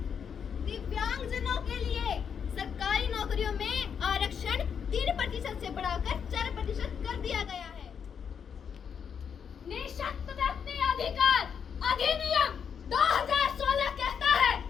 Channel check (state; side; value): quieter; right; 7.2 dB